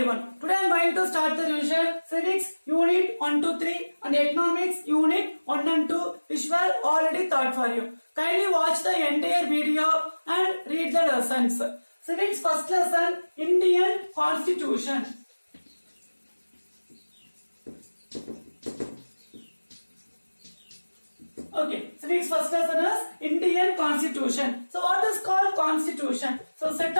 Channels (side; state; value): both; inverted; correlation -1.00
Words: Today I am going to start the revision Civics Unit 1 to 3 and Economics Unit 1 and 2 which were already taught for you. Kindly watch the entire video and read the lessons. Civics first lesson, Indian Constitution. Okay, civics first lesson is Indian Constitution. So what is called Constitution? So set